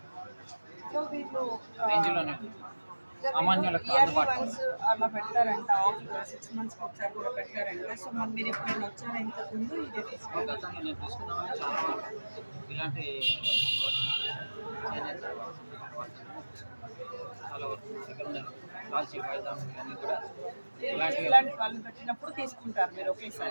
సో వీళ్ళు రేంజ్లోనే ఉంది, సామాన్యులకు ఇయర్లీ అందుబాటులో వన్స్ అలా పెడతారంట, 6 monthsకి ఒకసారి కూడా పెడతారంట. సో మరి మీరు ఎప్పుడైనా వచ్చారా ఇంతకు ముందు ఇదే తీసుకుంటారు? గతంలో నేను తీసుకున్నామని చాలా ఇలాంటి చేనేత చాలా వరకు దగ్గర ఉన్నాయి, కాల్చి పైదాం ఇవన్నీ కూడా ఇలాంటివి ఇలాంటి వాళ్ళు పెట్టినప్పుడు తీసుకుంటారు మీరు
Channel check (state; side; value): inverted; both; correlation -1.00